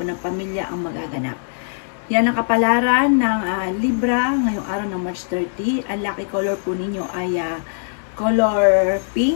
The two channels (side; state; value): right; silent; digital silence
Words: ng pamilya ang magaganap. Yan ang kapalaran ng Libra ngayong araw ng March 30. Ang lucky color po ninyo ay color